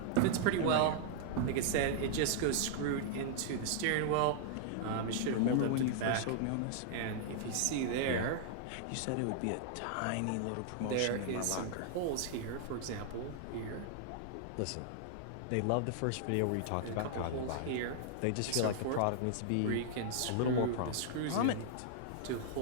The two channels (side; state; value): both; different; correlation -0.01